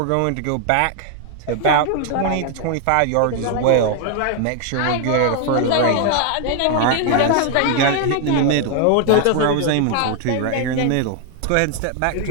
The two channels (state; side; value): different; both; correlation 0.00